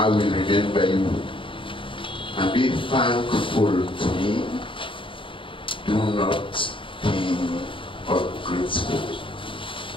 will remember you and be thankful to me. Do not be ungrateful.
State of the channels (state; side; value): late; right; 0.25 ms